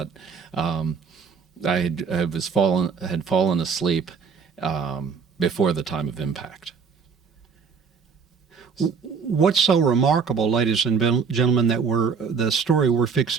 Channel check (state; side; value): quieter; left; 5.9 dB